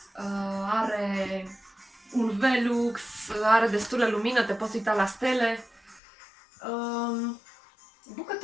Are un Velux, are destulă lumină, te poți uita la stele.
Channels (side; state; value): right; drops out; at 6.0 s